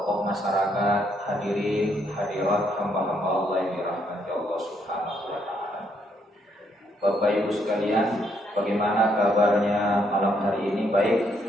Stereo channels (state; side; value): normal; both; correlation 0.73